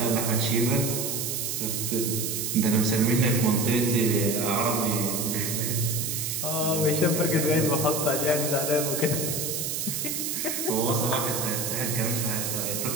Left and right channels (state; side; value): noise; right; hiss, 2 dB below the sound